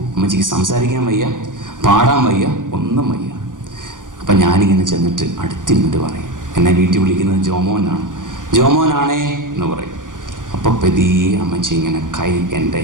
അമ്മച്ചിക്ക് സംസാരിക്കാൻ വയ്യ, പാടാൻ വയ്യ, ഒന്നും വയ്യ. അപ്പം ഞാനിങ്ങനെ ചെന്നിട്ട് അടുത്തിരുന്നിട്ട് പറയും, എന്നെ വീട്ടിൽ വിളിക്കുന്നത് ജോമോനാണേ എന്ന് പറയും. അപ്പോൾ പതിയെ അമ്മച്ചി ഇങ്ങനെ കൈ എൻ്റെ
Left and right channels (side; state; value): left; late; 0.88 ms